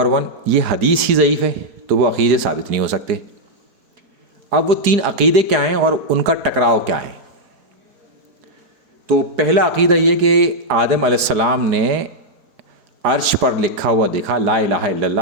1، یہ حدیث ہی ضعیف ہے تو وہ عقیدے ثابت نہیں ہو سکتے۔ اب وہ 3 عقیدے کیا ہیں اور ان کا ٹکراؤ کیا ہے؟ تو پہلا عقیدہ یہ کہ آدم علیہ السلام نے عرش پر لکھا ہوا دیکھا لا الہ الا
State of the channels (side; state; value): left; late; 4.9 ms